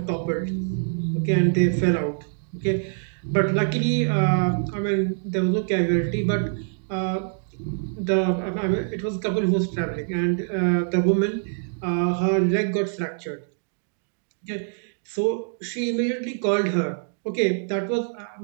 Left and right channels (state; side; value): silent; left; digital silence